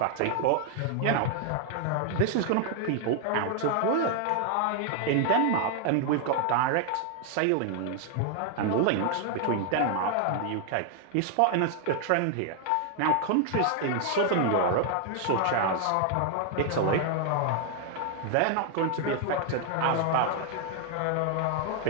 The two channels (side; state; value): both; different; correlation 0.00